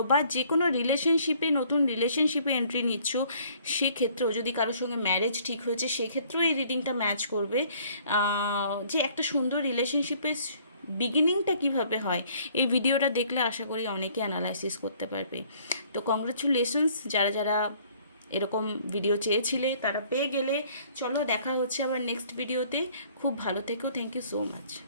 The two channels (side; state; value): both; inverted; correlation -0.59